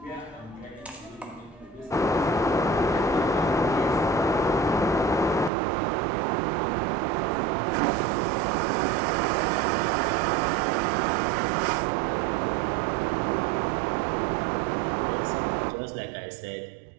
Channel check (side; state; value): left; drops out; at 5.5 s